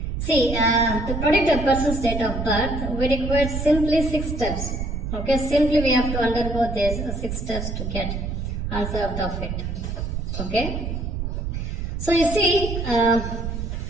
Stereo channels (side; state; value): right; noise; rumble, 4 dB below the sound